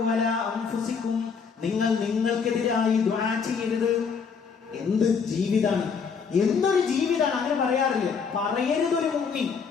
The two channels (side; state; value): right; quieter; 5.9 dB